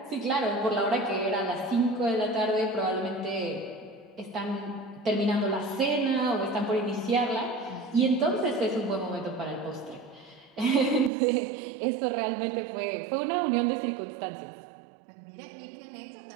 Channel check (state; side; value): drops out; left; at 11.1 s